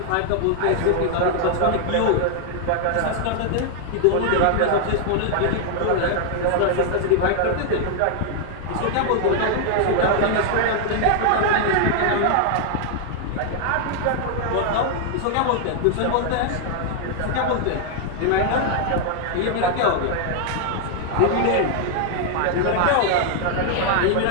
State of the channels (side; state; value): both; different; correlation 0.00